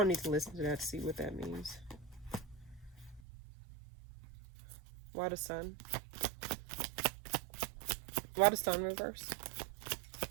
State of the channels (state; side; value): drops out; left; at 3.2 s